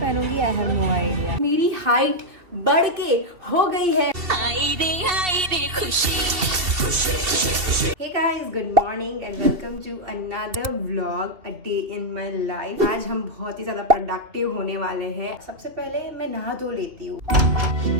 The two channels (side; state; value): left; late; 2.7 ms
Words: आई हैव नो आइडिया। मेरी हाइट बढ़ के हो गई है। हाय रे खुशी। Hey guys, good morning and welcome to another vlog, a day in my life। आज हम बहुत ही ज्यादा प्रोडक्टिव होने वाले हैं। सबसे पहले मैं नहा धो लेती हूँ।